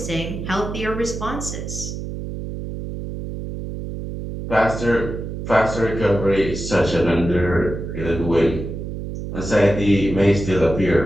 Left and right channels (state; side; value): noise; right; hum, 7 dB below the sound